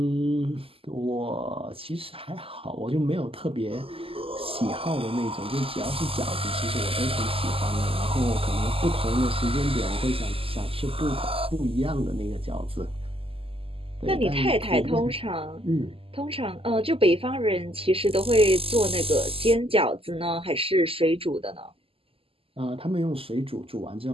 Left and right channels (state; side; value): late; left; 0.27 ms